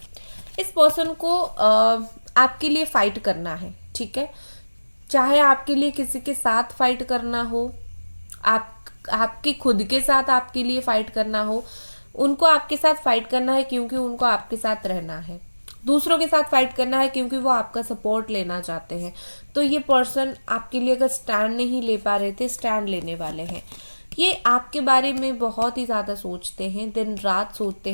इस पर्सन को आपके लिए फाइट करना है, ठीक है। चाहे आपके लिए किसी के साथ फाइट करना हो, आपके खुद के साथ आपके लिए फाइट करना हो, उनको आपके साथ फाइट करना है क्योंकि उनको आपके साथ रहना है। दूसरों के साथ फाइट करना है क्योंकि वो आपका सपोर्ट लेना चाहते हैं। तो ये पर्सन आपके लिए अगर स्टैंड नहीं ले पा रहे थे, स्टैंड लेने वाले हैं। ये आपके बारे में बहुत ही ज़्यादा सोचते हैं, दिन रात सोचते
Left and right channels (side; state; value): both; inverted; correlation -1.00